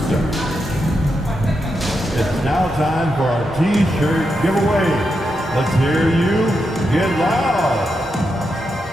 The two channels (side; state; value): both; normal; correlation 0.85